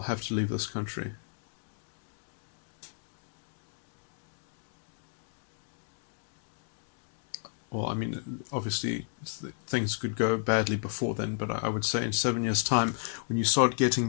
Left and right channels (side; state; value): right; silent; digital silence